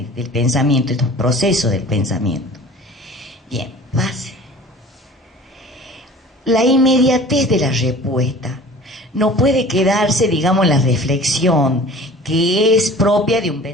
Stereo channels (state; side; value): normal; both; correlation 0.44